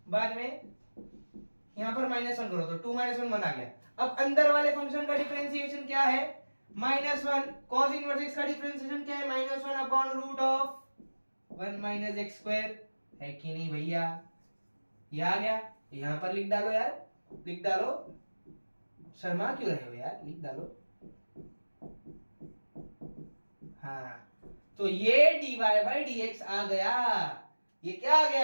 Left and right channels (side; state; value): both; inverted; correlation -1.00